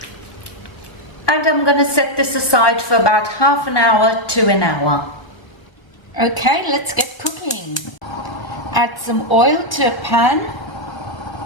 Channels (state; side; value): late; right; 1.2 ms